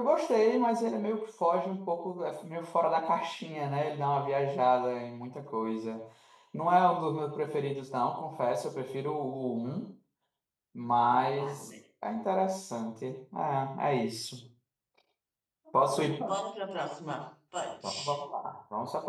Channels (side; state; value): both; identical; correlation 1.00